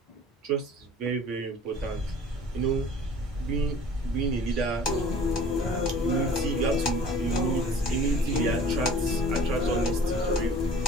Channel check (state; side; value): normal; both; correlation 0.47